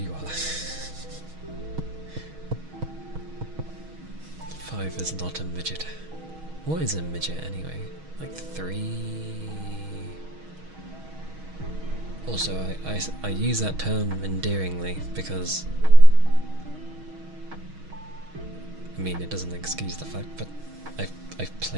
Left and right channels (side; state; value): left; late; 6.3 ms